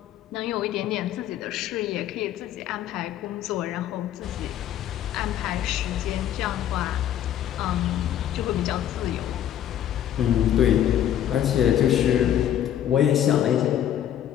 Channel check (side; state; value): right; quieter; 10.9 dB